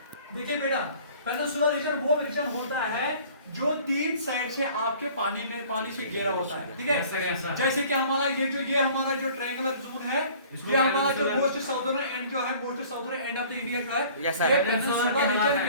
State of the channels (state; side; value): inverted; both; correlation -0.50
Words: देखिए बेटा, पेनिनसुला रीजन वो रीजन होता है जो 3 साइड से आपके पानी से घेरा होता है। ठीक है, जैसे कि हमारा ये हमारा जो ट्रायंगुलर जोन है, ये हमारा जो मोस्ट साउदर्न एंड जो है, most southern end of the India जो है, ये पेनिनसुला रीजन